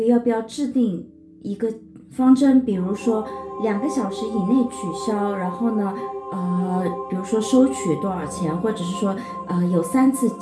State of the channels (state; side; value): identical; both; correlation 1.00